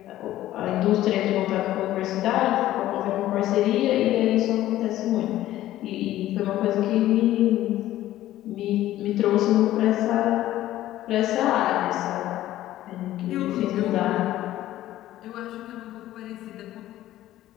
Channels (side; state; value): right; quieter; 14.2 dB